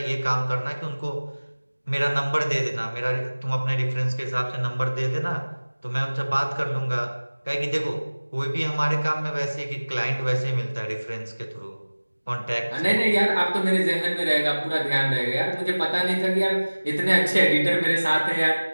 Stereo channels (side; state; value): both; inverted; correlation -1.00